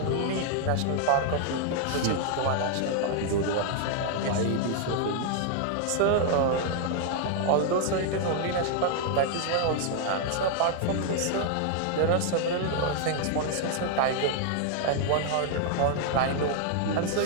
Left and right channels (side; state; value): both; different; correlation 0.00